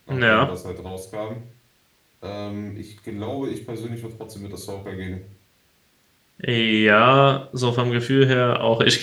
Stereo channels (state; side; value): identical; both; correlation 1.00